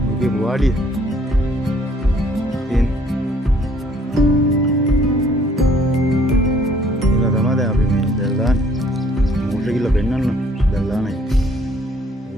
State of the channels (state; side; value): normal; both; correlation 0.61